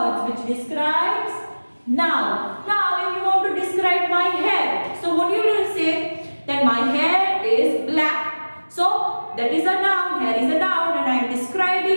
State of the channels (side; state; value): both; inverted; correlation -1.00